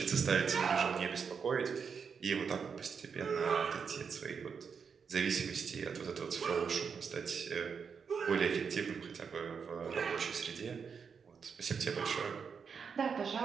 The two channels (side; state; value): left; quieter; 6.2 dB